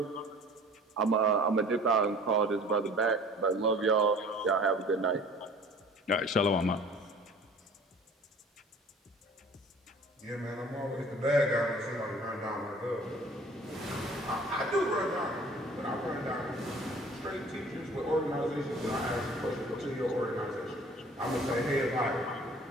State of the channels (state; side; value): normal; both; correlation 0.48